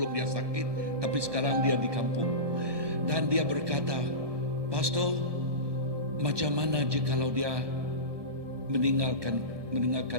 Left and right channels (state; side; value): late; left; 1.2 ms